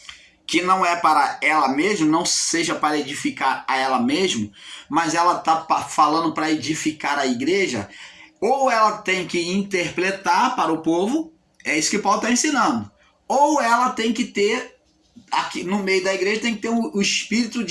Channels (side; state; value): both; identical; correlation 1.00